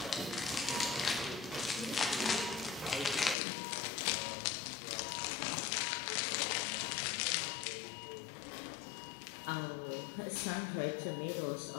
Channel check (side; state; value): right; drops out; at 3.4 s